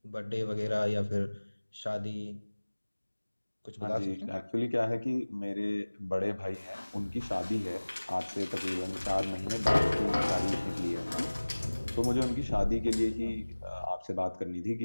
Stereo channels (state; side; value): inverted; both; correlation -1.00